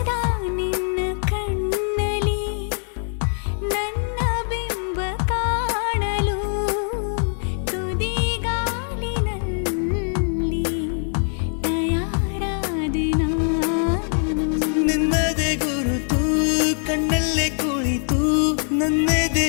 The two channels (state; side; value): silent; right; 64 dB below the other